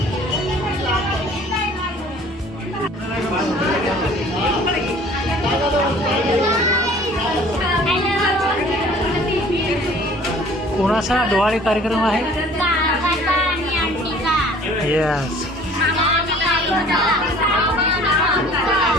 कोणाचा डोहाळे कार्यक्रम आहे? Yes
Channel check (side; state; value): both; normal; correlation 0.51